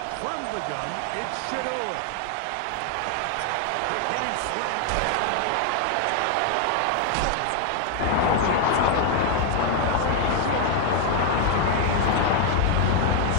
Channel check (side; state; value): both; different; correlation 0.01